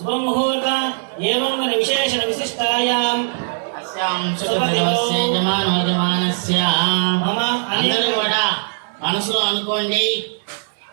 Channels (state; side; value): silent; left; digital silence